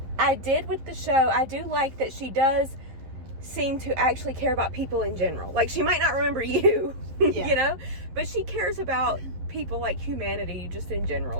I did with the show, I do like that she does seem to actually care about people in general. She might not remember you, but she cares about people, humanity just in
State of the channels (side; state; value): left; late; 11 ms